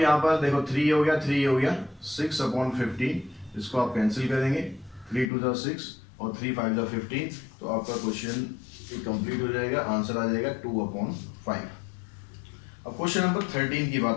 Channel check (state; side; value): drops out; right; at 5.3 s